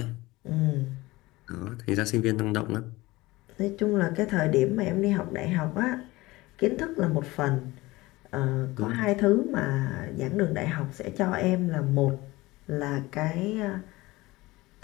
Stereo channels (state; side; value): quieter; right; 20.3 dB